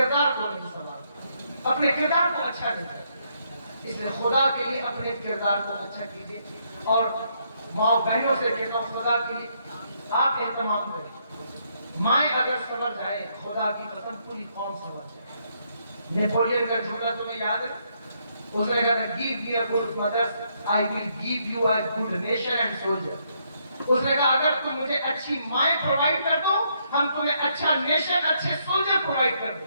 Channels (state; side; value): inverted; both; correlation -0.74